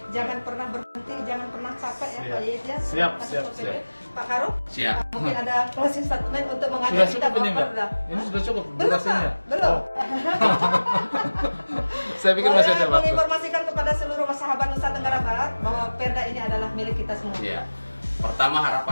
Jangan pernah berhenti, jangan pernah capek ya Siap. Pak Yit ya. Siap, Kasat siap, Pol PP. siap. Pak Karo, Siap. mungkin ada closing statement untuk mengajak Sudah kita cukup ini, Mbak? Perda. Ini sudah cukup Belum, durasinya? Pak. Belum. Oh. Saya pikir masih ada Boleh waktu. menginformasikan kepada seluruh sahabat Nusa Tenggara Barat bahwa perda ini adalah milik kita semua. Ya. Pertama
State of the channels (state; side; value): inverted; both; correlation -1.00